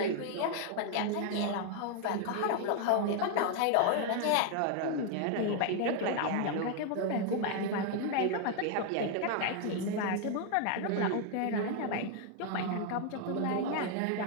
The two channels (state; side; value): different; both; correlation 0.00